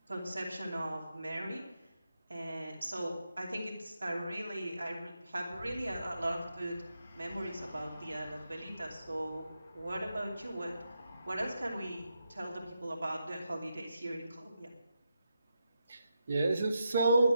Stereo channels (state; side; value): inverted; both; correlation -0.85